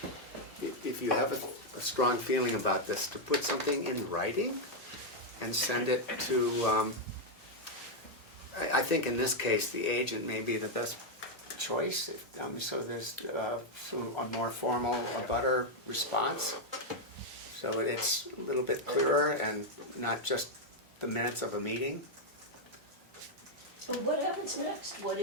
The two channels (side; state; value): both; normal; correlation 0.00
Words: if you have a strong feeling about this, to put something in writing and send it to, I think in this case, the agent may be the best choice, so there's a more formal, a better response. So it's a little bit clearer and not just the minutes of a meeting. So what happens next? What